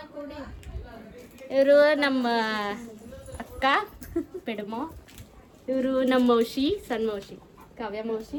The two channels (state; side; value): identical; both; correlation 1.00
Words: ಇವರು ನಮ್ಮ ಅಕ್ಕ ಪೆಡಮೋ, ಇವರು ನಮ್ಮ ಮೌಶಿ, ಸಣ್ಣ ಮೌಶಿ ಕಾವ್ಯ